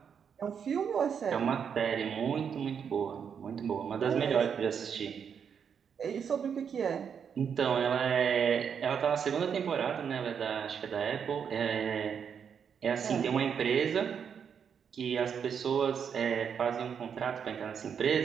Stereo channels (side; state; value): left; quieter; 7.3 dB